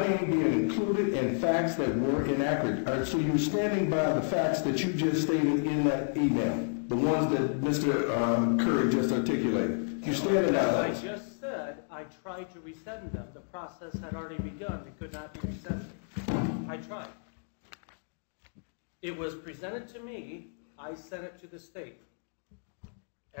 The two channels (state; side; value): silent; right; digital silence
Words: name being included in facts that were inaccurate. All right, so you're standing by the facts that you just stated in that email, the ones that Mr. Curry just articulated. You're standing by As those. I just said, I tried to resend them. The process had already begun. It could not be resended. I tried. It was presented to me. I sent it to the state